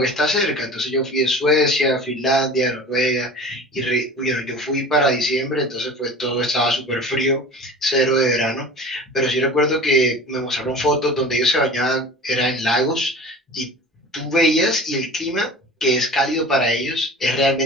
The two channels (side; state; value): both; normal; correlation 0.39